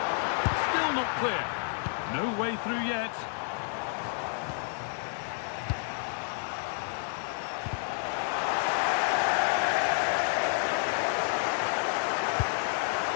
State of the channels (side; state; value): right; silent; 58 dB below the other